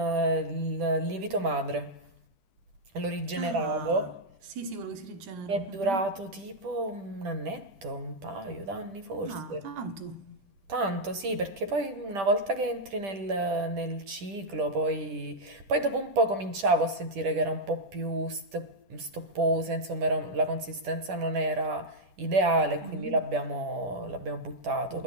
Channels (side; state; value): left; late; 10 ms